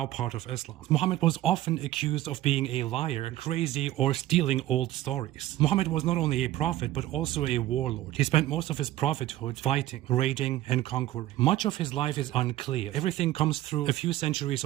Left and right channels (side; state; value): left; quieter; 15.0 dB